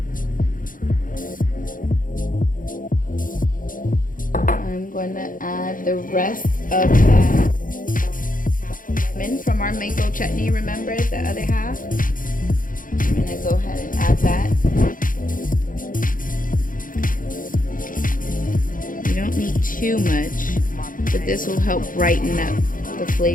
I'm going to add the rest of that from our mango chutney, remember the other half? I'm going to go ahead and add that. You don't need too much, but this will help brighten up the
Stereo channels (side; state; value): right; late; 0.40 ms